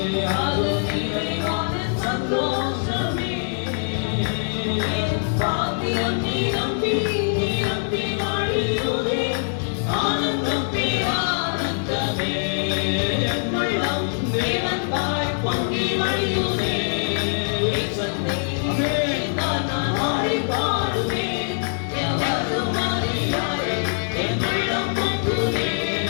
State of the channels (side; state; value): right; silent; digital silence